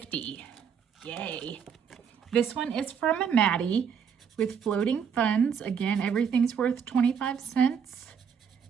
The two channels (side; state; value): left; quieter; 7.1 dB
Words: Yay. This one is from Maddie with floating funds. Again, everything's worth 25 cents.